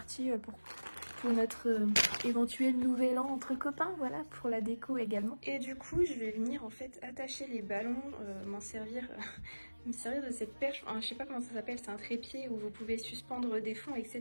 pour notre éventuel nouvel an entre copains, voilà, pour la déco également. Et du coup je vais venir en fait attacher les ballons, m'en servir... me servir de cette perche, enfin, je sais pas comment ça s'appelle, c'est un trépied où vous pouvez suspendre des fonds,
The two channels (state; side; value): inverted; both; correlation -1.00